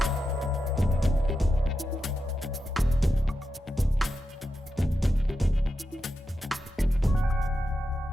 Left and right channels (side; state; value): both; normal; correlation 0.88